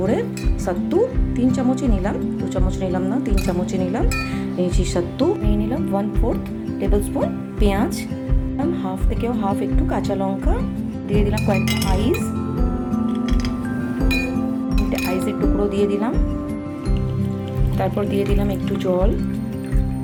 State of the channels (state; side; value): identical; both; correlation 1.00